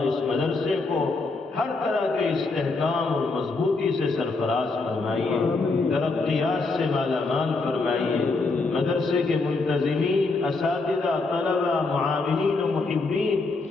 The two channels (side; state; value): right; quieter; 3.7 dB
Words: اس مدرسے کو ہر طرح کے استحکام اور مضبوطی سے سرفراز فرمائیے، ترقیات سے مالا مال فرمائیے، مدرسے کے منتظمین، اساتذہ، طلبہ، معاونین و محبین